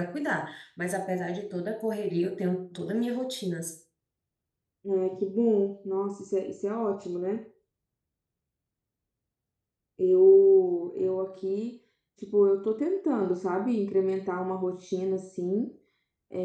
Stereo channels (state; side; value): identical; both; correlation 1.00